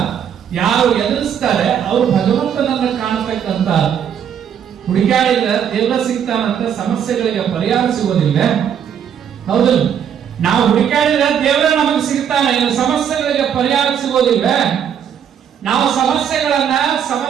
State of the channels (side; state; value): left; quieter; 8.5 dB